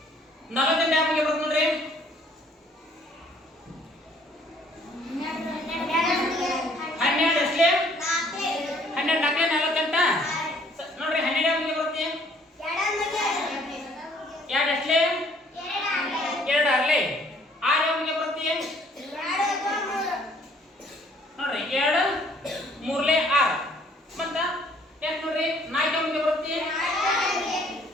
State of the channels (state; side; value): normal; both; correlation 0.60